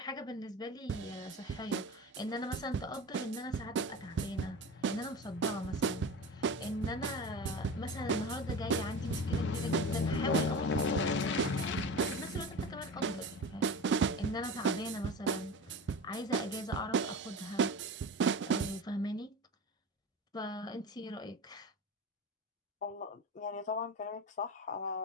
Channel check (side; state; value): both; normal; correlation 0.30